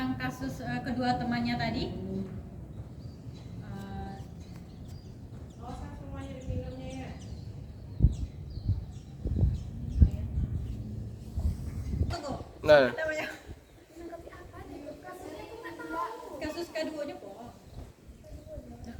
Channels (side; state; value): both; identical; correlation 1.00